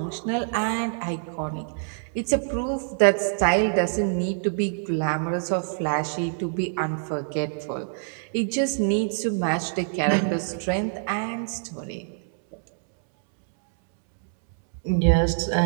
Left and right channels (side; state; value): left; silent; 61 dB below the other